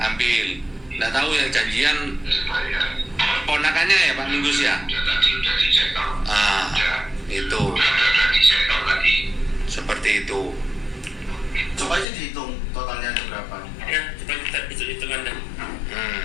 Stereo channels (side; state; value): right; drops out; at 12.1 s